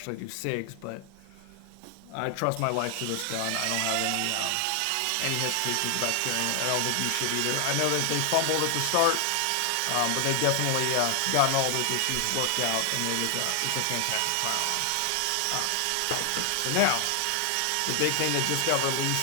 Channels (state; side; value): different; both; correlation 0.00